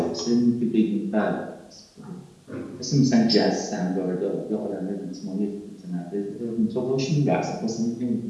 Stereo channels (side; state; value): both; identical; correlation 1.00